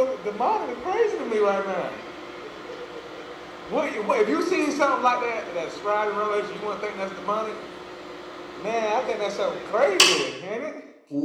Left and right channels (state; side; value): identical; both; correlation 1.00